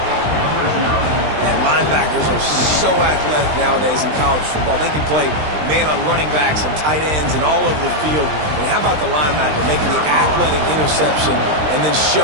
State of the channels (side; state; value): left; late; 20 ms